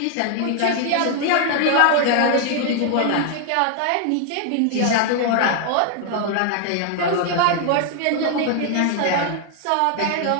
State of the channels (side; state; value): both; different; correlation 0.00